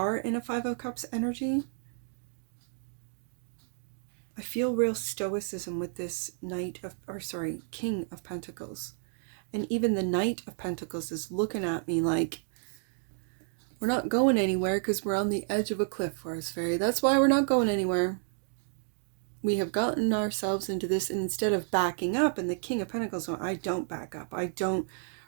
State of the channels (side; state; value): left; silent; 57 dB below the other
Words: in a Five of Cups energy. I feel real stoicism with this King of Pentacles. And even the Knight of Pentacles is looking at me like, we're not going anywhere because we're on the edge of a cliff, Forest Fairy. That's why we're not going anywhere. We have gotten ourselves into this, and instead of backing up, and the King of Pentacles, I don't back up. I don't,